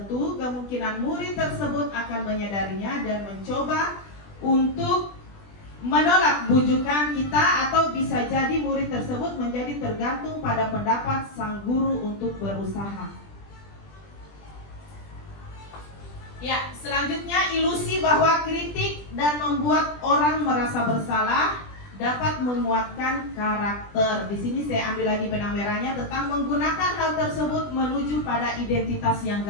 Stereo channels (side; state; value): right; late; 20 ms